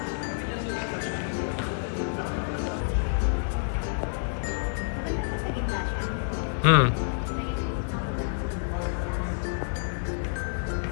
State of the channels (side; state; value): right; silent; digital silence